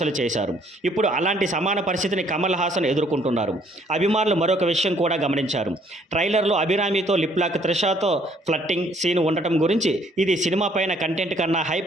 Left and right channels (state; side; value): normal; both; correlation 0.63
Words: చేశారు. ఇప్పుడు అలాంటి సమాన పరిస్థితిని కమల్ హాసన్ ఎదుర్కొంటున్నారు. అభిమానులు మరొక విషయం కూడా గమనించారు. ట్రైలర్లో అభిరామితో లిప్ లాక్, త్రిషాతో ఫ్లట్టింగ్ సీన్ ఉండటం గురించి ఇది సినిమా పైన కంటెంట్ కన్నా